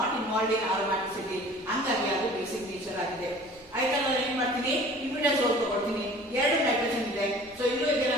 involved in aromaticity, ಹಂಗಾಗಿ ಅದು basic nature ಆಗಿದೆ. ಆಯ್ತಾ, ನಾನು ಏನ್ ಮಾಡ್ತೀನಿ, ಇಮಿಡಾಜೋಲ್ ತಗೊಳ್ತೀನಿ. 2 nitrogen ಇದೆ, so ಇಲ್ಲೂ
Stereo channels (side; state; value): both; normal; correlation 0.46